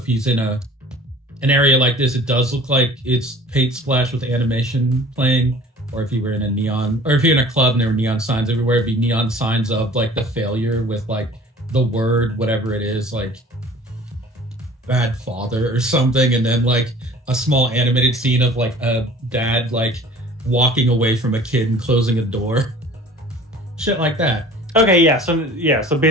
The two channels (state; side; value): normal; both; correlation 0.47